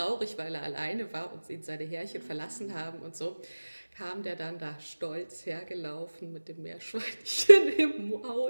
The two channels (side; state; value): both; inverted; correlation -1.00